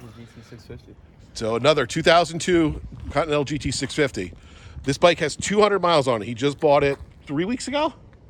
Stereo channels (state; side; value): identical; both; correlation 1.00